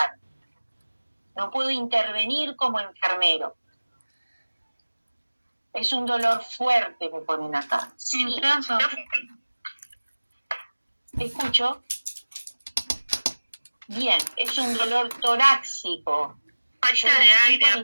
No puedo intervenir como enfermero. Es un dolor fuerte, me ponen acá. Sí. Intenso. ¿Escucho? Bien, es un dolor torácico. Falta de aire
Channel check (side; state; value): both; inverted; correlation -1.00